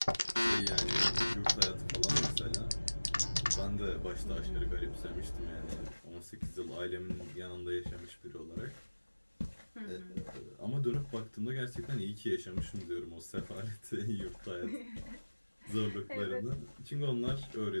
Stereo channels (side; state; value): both; inverted; correlation -1.00